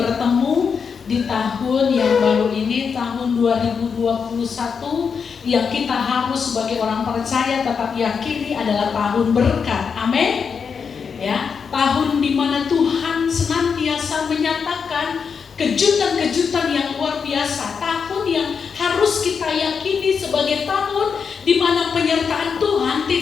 di tahun yang baru ini, tahun 2021, yang kita harus sebagai orang percaya tetap yakini adalah tahun berkat. Amin. Ya, tahun di mana Tuhan senantiasa menyatakan kejutan-kejutan yang luar biasa, tahun yang harus kita yakini sebagai tahun di mana penyertaan Tuhan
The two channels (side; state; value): right; quieter; 6.1 dB